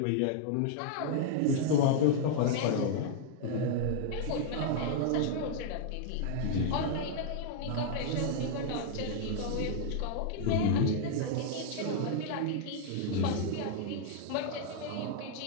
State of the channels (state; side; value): different; both; correlation -0.01